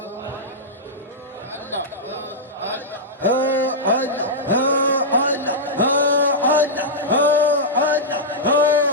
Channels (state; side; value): normal; both; correlation -0.10